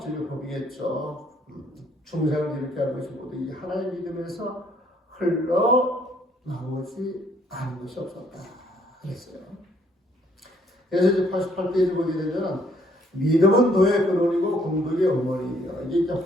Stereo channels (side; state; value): both; normal; correlation 0.65